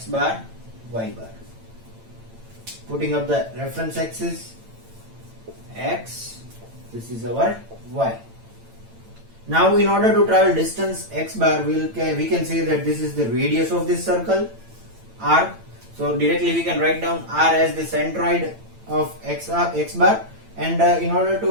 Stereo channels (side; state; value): left; late; 8.9 ms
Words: bar, y bar. Putting up the reference axis, x, this is our y. Now in order to travel distance x bar, we can say that this is the radius of this circle, r. So directly we can write down r as the centroid of x bar, and in order